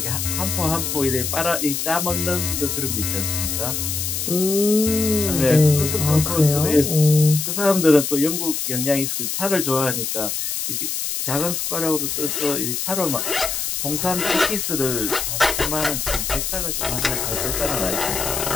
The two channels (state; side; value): noise; left; hiss, 2 dB below the sound